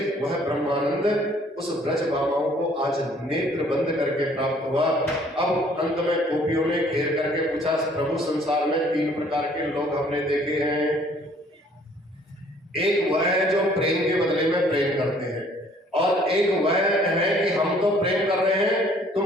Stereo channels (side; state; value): both; normal; correlation 0.59